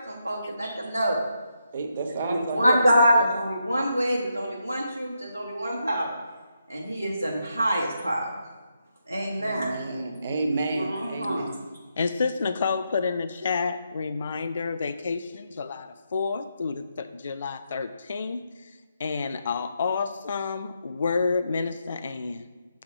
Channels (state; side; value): inverted; both; correlation -0.82